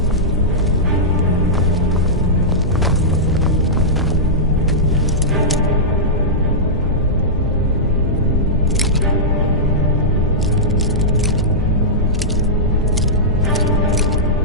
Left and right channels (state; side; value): normal; both; correlation -0.13